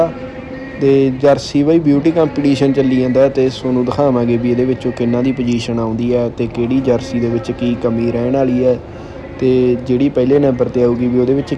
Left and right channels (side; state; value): both; identical; correlation 1.00